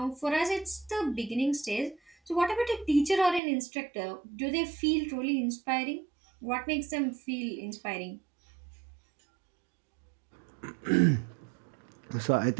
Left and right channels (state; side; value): drops out; left; at 3.4 s